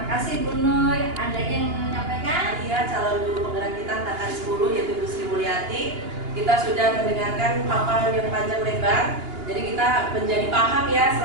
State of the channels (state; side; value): late; left; 2.9 ms